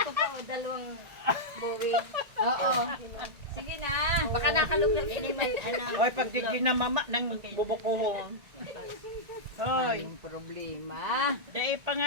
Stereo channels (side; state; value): left; late; 1.9 ms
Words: pa o, dalawang buwi. Oo. Sige na. Baka nakaluglag. Oy, pag di ginamama ng bubuko. Oy, Yung problema. dahil